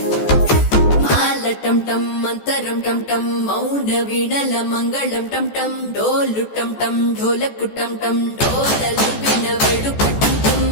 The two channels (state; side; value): late; right; 14 ms